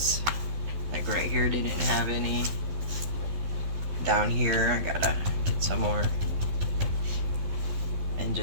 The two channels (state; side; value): late; left; 12 ms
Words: Like right here didn't have any. Down here I gotta get some more, and